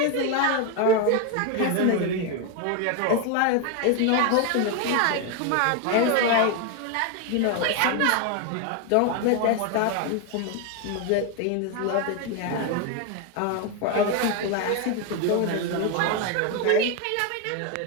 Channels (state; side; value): different; both; correlation 0.01